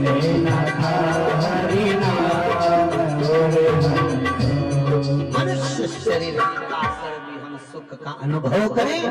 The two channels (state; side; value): identical; both; correlation 1.00